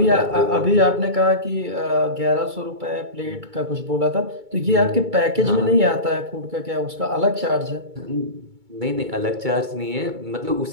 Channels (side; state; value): left; late; 2.2 ms